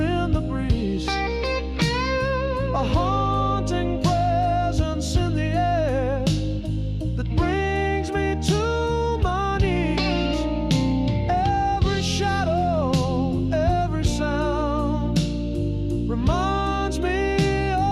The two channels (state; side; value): identical; both; correlation 1.00